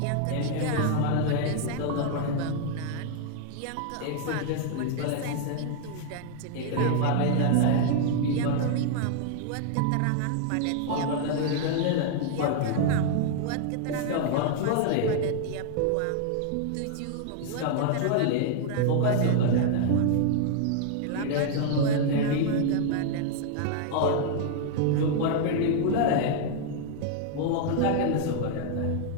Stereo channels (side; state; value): both; different; correlation 0.00